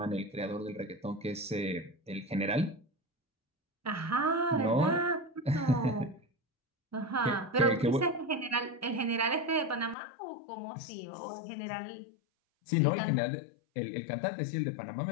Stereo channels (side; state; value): right; drops out; at 10.0 s